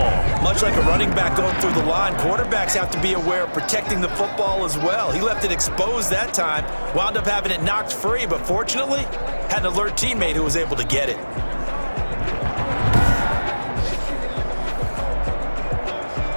Much like a running back going through the line, quarterbacks have to be aware of protecting the football as well. He left it exposed that time, wound up having it knocked free, but fortunately, had an alert teammate who was able to get it.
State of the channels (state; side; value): inverted; both; correlation -1.00